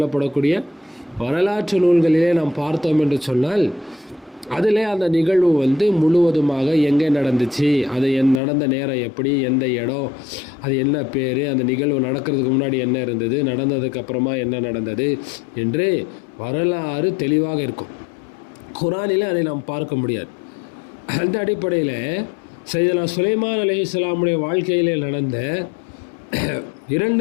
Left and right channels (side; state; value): right; drops out; at 8.4 s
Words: வரலாற்று நூல்களிலே நாம் பார்த்தோம் என்று சொன்னால், அதில் அந்த நிகழ்வு முழுவதுமாக எங்கே நடந்துச்சு, அது நடந்த நேரம் எப்படி, எந்த இடம், அது என்ன பேர், அந்த நிகழ்வு நடக்கிறதுக்கு முன்னாடி என்ன இருந்தது, நடந்ததுக்கு அப்புறமா என்ன நடந்தது என்று வரலாறு தெளிவாக இருக்கும். குர்ஆனில் அதை நாம் பார்க்க முடியாது. அந்த அடிப்படையில் சையதுனா சுலைமான் அலைஹிஸ்ஸலாமுடைய வாழ்க்கையிலே நடந்த